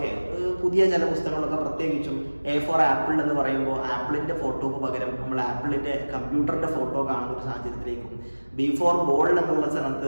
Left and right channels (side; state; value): both; inverted; correlation -1.00